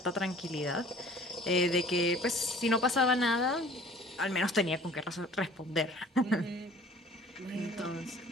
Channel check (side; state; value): both; normal; correlation 0.50